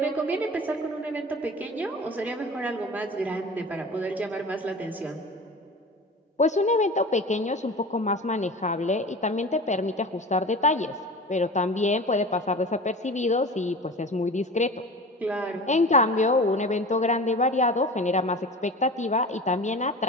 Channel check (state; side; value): normal; both; correlation 0.35